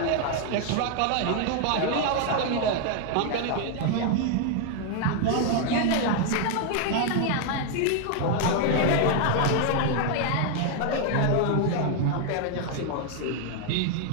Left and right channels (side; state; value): both; different; correlation 0.01